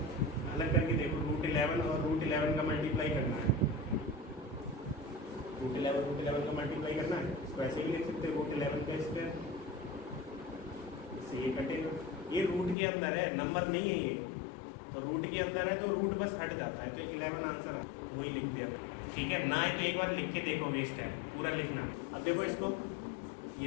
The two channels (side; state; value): right; drops out; at 12.8 s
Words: अलग करके देखो, √11 और √11 का मल्टीप्लाई करना है, √11 का मल्टीप्लाई करना है, इसको ऐसे भी लिख सकते हैं √11 का स्क्वायर, इससे ये कटेगा। ये रूट के अंदर है, नंबर नहीं है ये, तो रूट के अंदर है तो रूट बस हट जाता है, तो 11 आंसर है, वही लिख दिया, ठीक है। ना है तो एक बार लिख के देखो, वेस्ट है पूरा लिखना। अब देखो इसको,